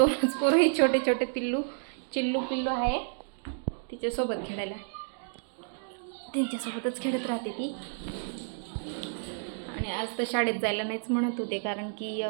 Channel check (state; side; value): silent; left; digital silence